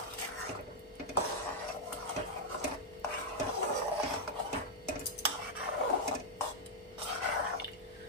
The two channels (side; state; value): both; normal; correlation -0.02